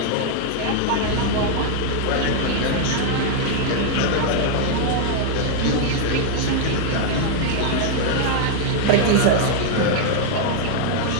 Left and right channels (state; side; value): different; both; correlation 0.00